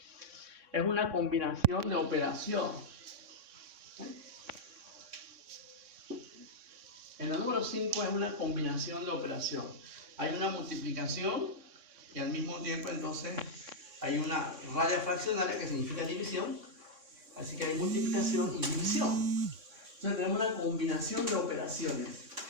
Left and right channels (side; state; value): left; late; 3.6 ms